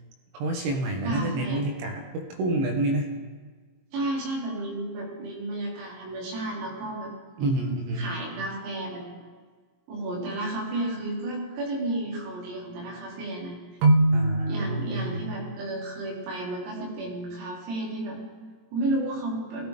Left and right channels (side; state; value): left; late; 22 ms